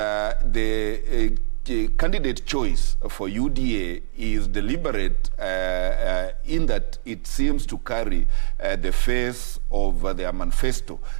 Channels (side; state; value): left; silent; 64 dB below the other